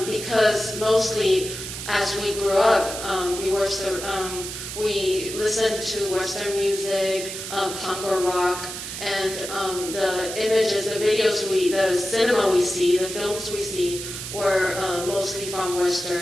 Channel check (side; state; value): right; noise; hiss, 8 dB below the sound